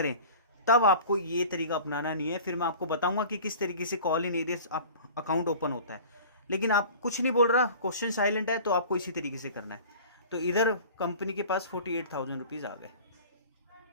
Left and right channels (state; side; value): inverted; both; correlation -0.41